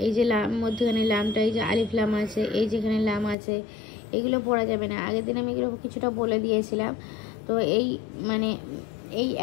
এই যে লাম মধ্যখানে লামটা এই যে আলিফ লাম আছে এই যেখানে লাম আছে এগুলো পড়া যাবে না। আগের দিন আমি এগুলো কিছুটা বলে দিয়েছিলাম। তো এই মানে এই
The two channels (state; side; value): drops out; right; at 3.4 s